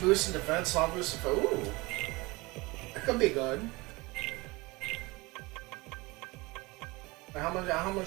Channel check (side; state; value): left; quieter; 23.6 dB